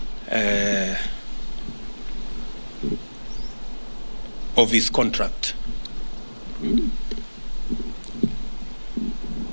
of his contract.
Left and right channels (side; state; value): both; inverted; correlation -1.00